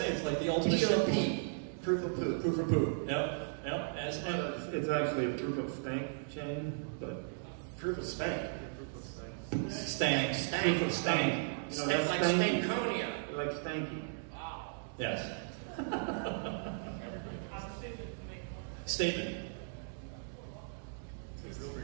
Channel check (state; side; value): silent; left; digital silence